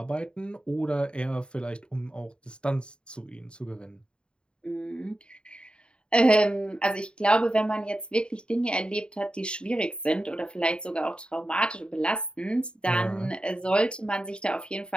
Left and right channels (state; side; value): late; right; 0.052 ms